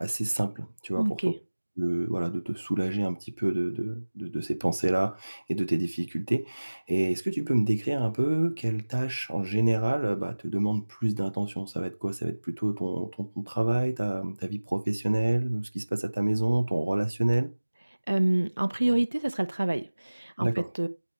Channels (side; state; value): both; inverted; correlation -1.00